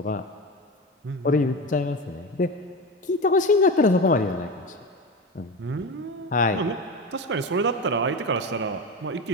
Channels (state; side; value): normal; both; correlation 0.24